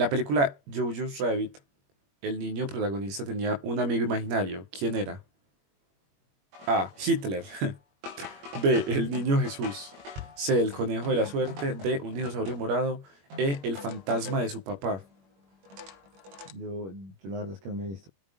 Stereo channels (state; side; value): late; left; 21 ms